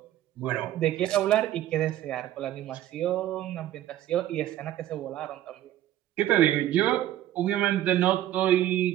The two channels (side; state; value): left; quieter; 12.9 dB